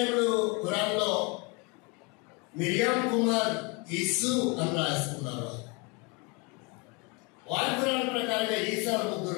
ఖురాన్లో మిరియాం కుమార్ యేసు అని రాసుకున్నారు. వారి ఖురాన్ ప్రకారంగా ఈసాలు 3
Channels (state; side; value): quieter; right; 29.8 dB